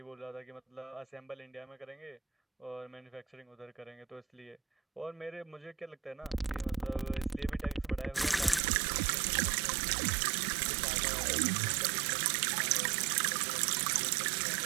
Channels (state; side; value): drops out; left; at 8.6 s